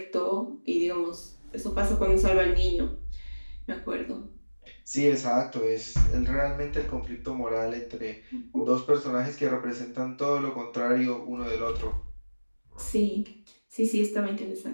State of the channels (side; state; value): both; inverted; correlation -1.00